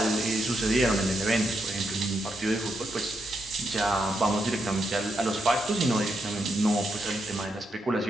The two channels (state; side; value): normal; both; correlation 0.81